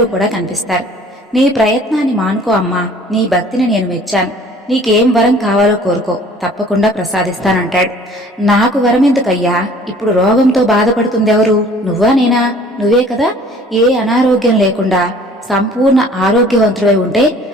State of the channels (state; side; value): normal; both; correlation 0.52